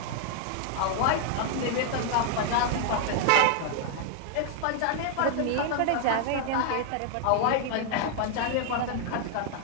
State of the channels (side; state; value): both; different; correlation 0.00